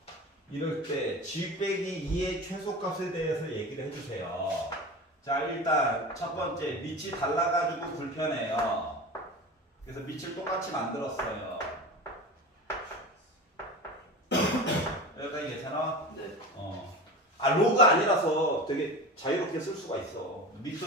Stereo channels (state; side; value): normal; both; correlation 0.30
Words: 이럴 때 g 빼기 2의 최소값에 대해서 얘기를 해주세요. 자, 일단 첫 번째 밑이 달라가지고 불편해요. 그래서 밑을 똑같이 만들었어요. 여기까지 괜찮아? 네. 로그 아니라서 되게 자유롭게 쓸 수가 있어. 밑도